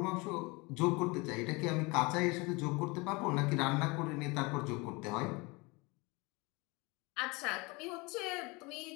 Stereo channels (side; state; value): right; quieter; 26.3 dB